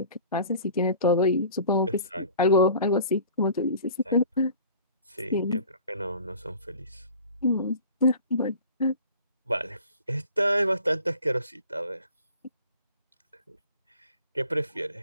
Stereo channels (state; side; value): inverted; both; correlation -0.45